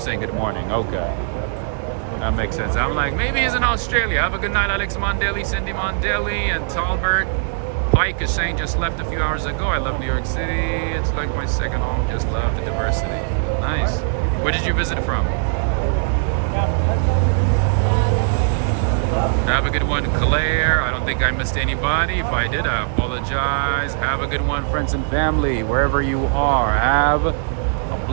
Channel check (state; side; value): silent; left; digital silence